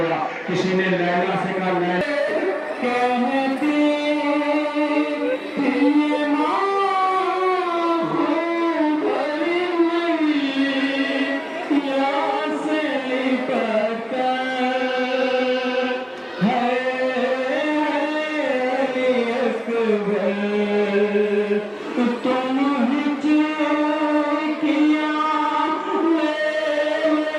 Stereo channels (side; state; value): both; identical; correlation 1.00